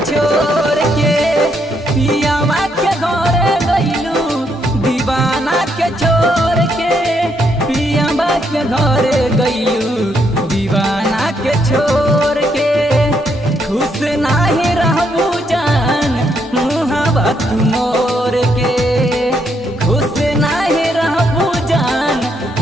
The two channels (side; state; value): both; normal; correlation 0.75